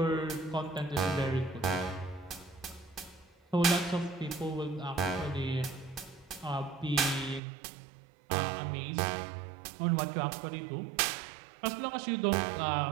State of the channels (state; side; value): drops out; left; at 7.4 s